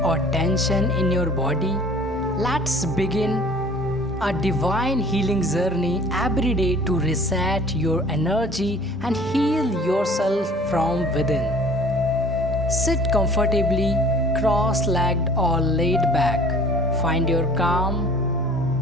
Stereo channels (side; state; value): both; normal; correlation 0.49